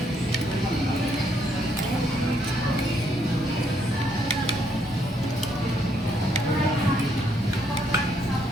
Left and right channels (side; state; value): both; normal; correlation 0.72